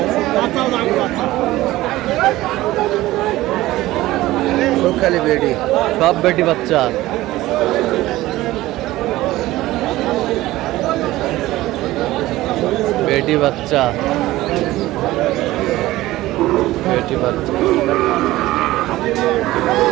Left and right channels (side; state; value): left; quieter; 17.0 dB